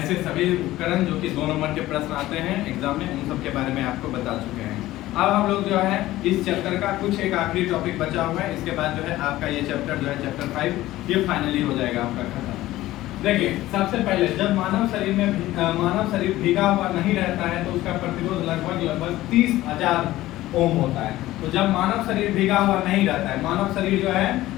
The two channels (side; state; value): right; quieter; 16.1 dB